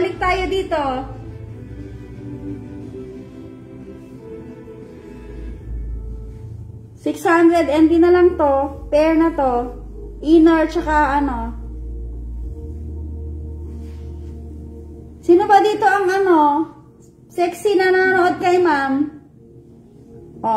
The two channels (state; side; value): identical; both; correlation 1.00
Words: tayo dito. $600 NT na lang to. Pair na to. Inner tsaka ano. Sino ba dito ang ano? Sexy na nanonood kay ma'am?